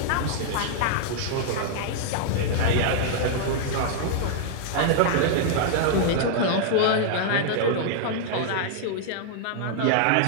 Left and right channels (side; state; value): both; different; correlation -0.01